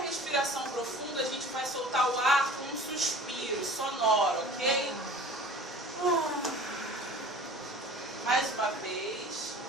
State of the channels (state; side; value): normal; both; correlation 0.44